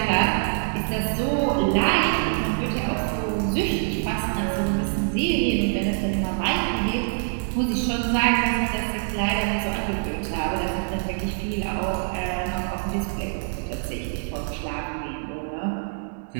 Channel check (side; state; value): left; silent; 62 dB below the other